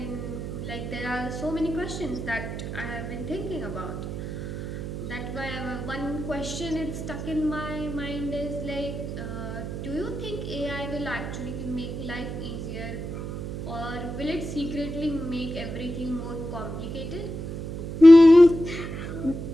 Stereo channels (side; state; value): right; noise; hum, 6 dB below the sound